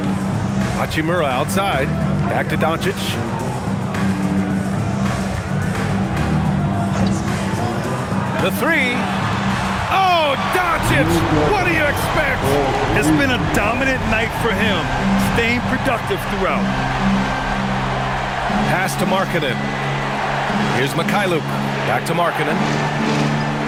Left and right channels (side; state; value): both; identical; correlation 1.00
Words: Hachimura outside. Back to Doncic. The 3. Oh, Doncic! What do you expect? It's been a dominant night for him, staying productive throughout. Pass to Markkanen. Here's Mikhailuk. Back to Markkanen.